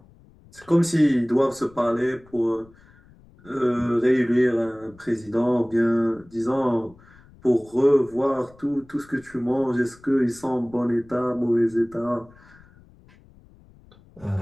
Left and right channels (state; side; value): noise; left; rumble, 26 dB below the sound